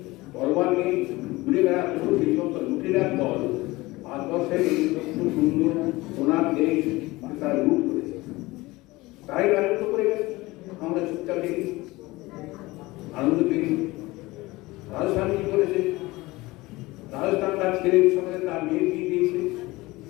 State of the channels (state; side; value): quieter; right; 20.7 dB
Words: তরবার নেই ঘুরে বেড়াচ্ছে সেই সমস্ত লুটেরার দল ভারতবর্ষের এই সুন্দর সোনার দেশ তারা লুট করেছে, তারাই রাজত্ব করে গেছে। আমরা চুপচাপ দেখি, আনন্দ পেয়েছি। রাজস্থান কি করেছে? রাজস্থান তার ছেলের সঙ্গে তার মেয়ে দিয়ে দিয়েছে,